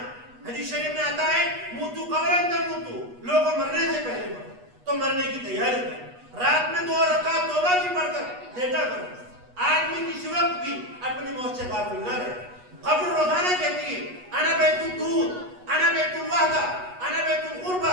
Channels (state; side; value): late; left; 8.2 ms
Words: حدیث شریف میں آتا ہے موتو قبرن تموتو, لوگوں مرنے سے پہلے مرو. تو مرنے کی تیاری کرو. رات میں 2 رکعت توبہ کی پڑھ کر لیٹا کرو. آدمی کسی وقت بھی اپنی موت سے غافل نہ رہے. قبر روزانہ کہتی ہے انا بیت الدود, انا بیت الوحدہ, انا بیت